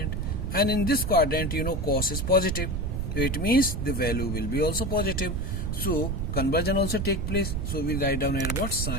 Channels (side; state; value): right; noise; rumble, 2 dB below the sound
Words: and in this quadrant you know cos is positive. So it means the value will be also positive. So conversion also take place. So we write down here what